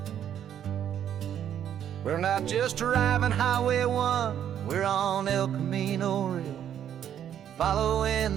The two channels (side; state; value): left; quieter; 9.8 dB